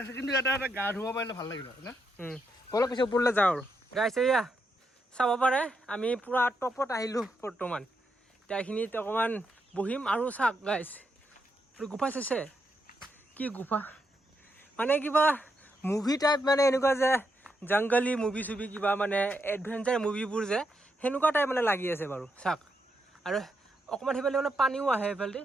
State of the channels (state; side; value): normal; both; correlation 0.81